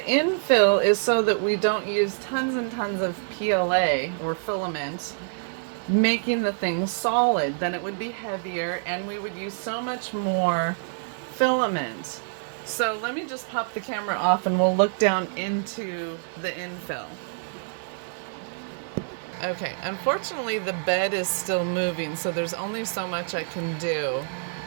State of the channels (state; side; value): silent; left; digital silence